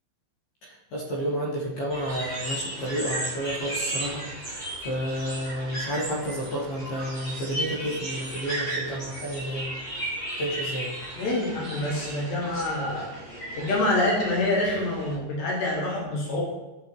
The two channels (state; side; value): late; right; 15 ms